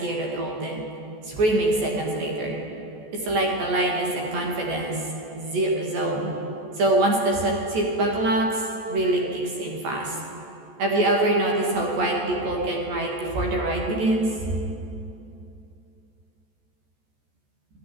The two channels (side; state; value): left; late; 14 ms